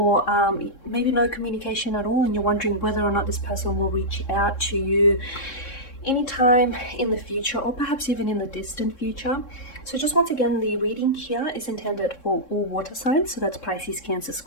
maybe no communication at all, and you're wondering whether or not this person will reach out to you anytime in the future, or perhaps even in the distant future. So just once again, the reading here is intended for all water signs, so that's Pisces, Cancer,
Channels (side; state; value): right; late; 3.7 ms